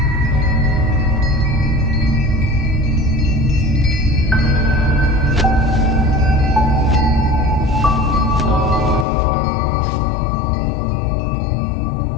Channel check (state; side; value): drops out; right; at 9.1 s